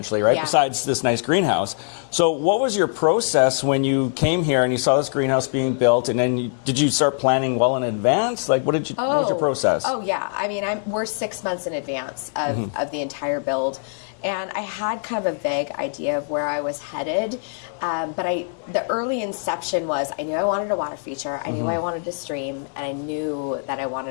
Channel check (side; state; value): right; silent; 61 dB below the other